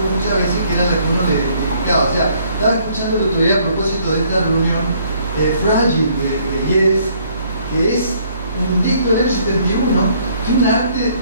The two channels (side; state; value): both; inverted; correlation -0.64